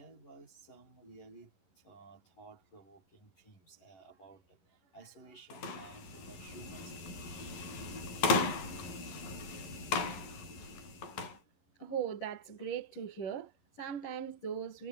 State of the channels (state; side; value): late; right; 11 ms